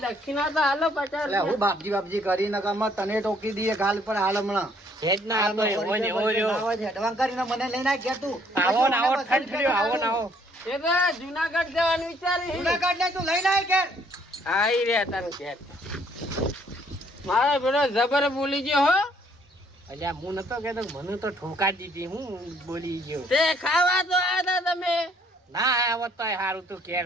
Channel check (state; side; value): normal; both; correlation 0.64